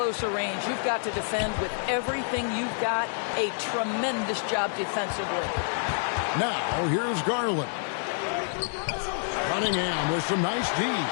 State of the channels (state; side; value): silent; right; 59 dB below the other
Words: a range, you've got to defend with everything you've got. A tremendous job defensively. Now, here's Garland. Cunningham with some nice D.